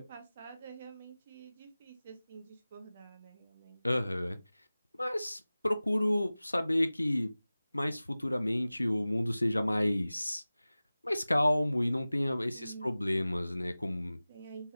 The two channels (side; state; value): both; inverted; correlation -0.98